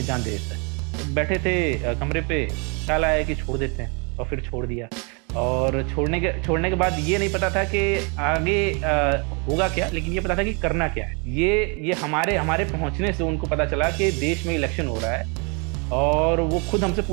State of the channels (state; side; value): quieter; left; 33.6 dB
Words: जान दे देता है। बैठे थे कमरे पे, ख्याल आया कि छोड़ देते हैं और फिर छोड़ दिया। और छोड़ने के बाद ये नहीं पता था कि आगे होगा क्या, लेकिन ये पता था कि करना क्या है। ये हमारे पहुँचने से उनको पता चला कि देश में इलेक्शन हो रहा है और वो खुद हमसे